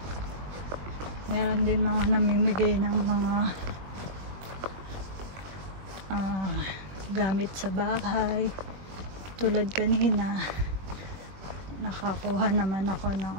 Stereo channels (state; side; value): late; left; 20 ms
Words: Meron din mga namimigay ng mga gamit sa bahay. Tulad kanina, nakakuha naman ako ng